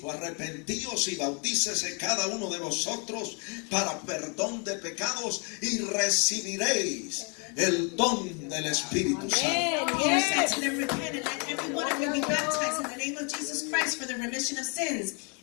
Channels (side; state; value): right; quieter; 36.0 dB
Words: arrepentíos y bautícese cada uno de vosotros para perdón de pecados y recibiréis el don del Espíritu Santo. Peter said to them, repent and let every one of you be baptized in the name of Jesus Christ for the remission of sins,